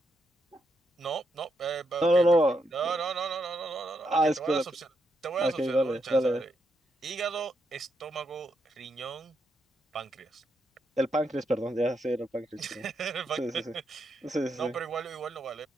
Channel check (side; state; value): both; normal; correlation 0.80